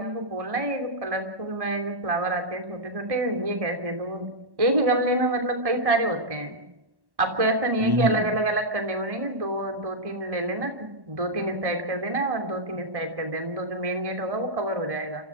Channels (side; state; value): left; late; 1.1 ms